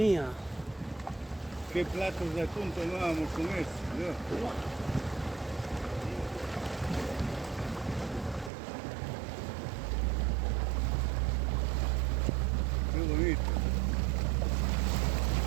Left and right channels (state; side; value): drops out; left; at 8.5 s